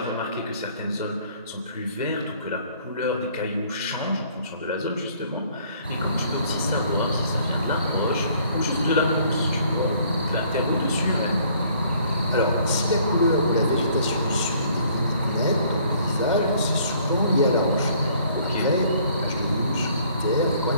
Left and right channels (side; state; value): both; inverted; correlation -0.60